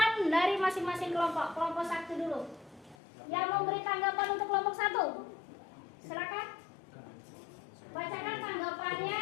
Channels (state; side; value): drops out; right; at 3.0 s